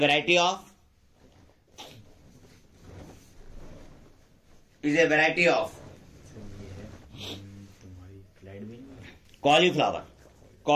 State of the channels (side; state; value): both; identical; correlation 1.00